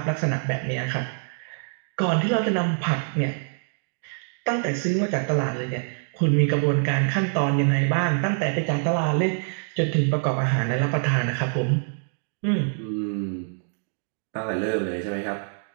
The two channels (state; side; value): silent; left; 59 dB below the other